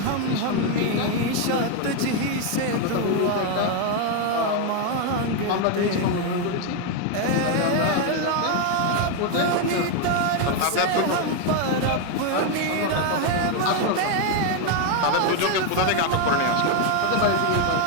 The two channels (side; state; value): both; different; correlation 0.01